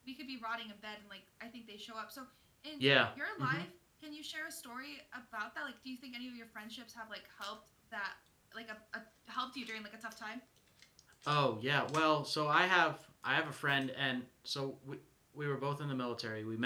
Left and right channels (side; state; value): both; identical; correlation 1.00